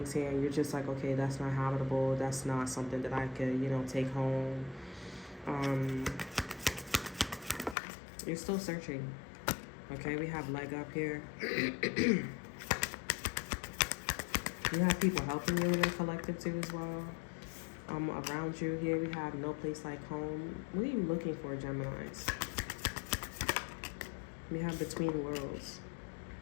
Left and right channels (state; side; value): drops out; right; at 7.8 s